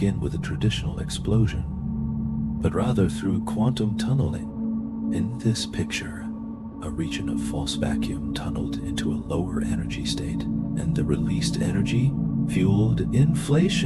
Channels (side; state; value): both; identical; correlation 1.00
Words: with a traditional explosion, but rather through quantum tunneling. In this picture, a region of false vacuum tunneled into a lower energy state, and the released energy fueled